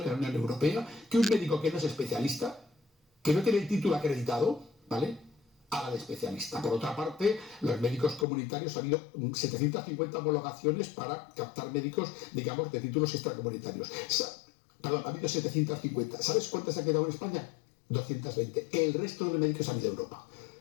en la Unión Europea que un médico que no es especialista, que no tiene el título acreditado, ¿vale?, haga de especialista. Por otra parte, los médicos comunitarios, ha habido 750 homologaciones para captar médicos, digamos, de títulos extracomunitarios. Perdón, ha habido 750. ¿Sabes cuántas ha quedado en España? 220. El resto de los médicos han ido a Europa.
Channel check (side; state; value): right; drops out; at 8.2 s